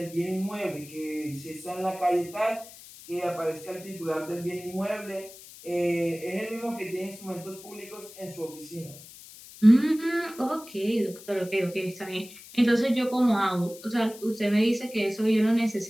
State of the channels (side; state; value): left; noise; hiss, 18 dB below the sound